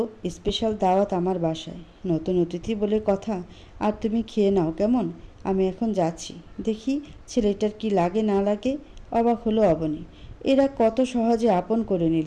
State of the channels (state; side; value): identical; both; correlation 1.00